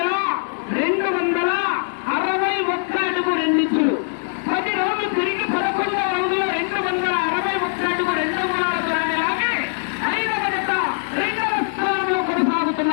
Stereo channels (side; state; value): right; silent; digital silence